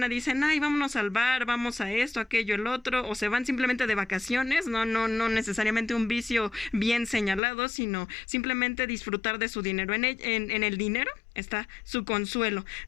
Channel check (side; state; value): right; drops out; at 7.4 s